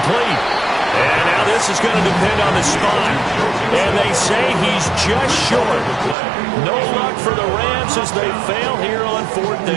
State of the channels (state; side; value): drops out; left; at 6.2 s